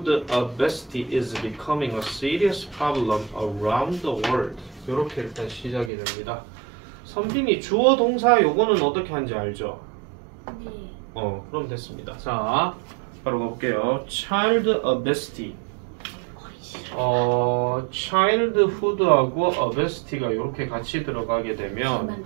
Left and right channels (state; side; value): drops out; left; at 5.9 s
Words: obesity is becoming a serious problem around the world. 이렇게 일단 시작이 됩니다. 선빈이 주어 동사 요거는 어떻게 하는지 알죠? 네. 그럼 됐습니다. 자, 바로 가볼게요. child obesity. childhood하고 obesity가 이렇게 같이 들어가게 되면